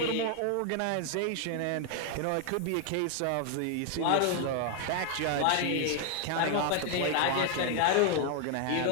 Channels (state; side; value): different; both; correlation 0.00